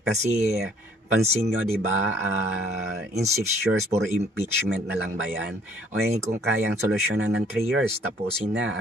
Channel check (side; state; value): both; normal; correlation 0.60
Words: Kasi pansin nyo, di ba, in 6 years puro impeachment na lang ba yan? O kung kayang solusyonan ng 3 years, tapusin na,